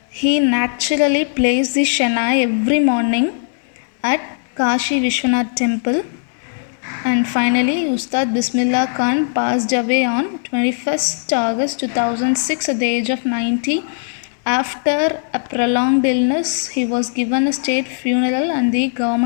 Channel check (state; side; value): silent; right; digital silence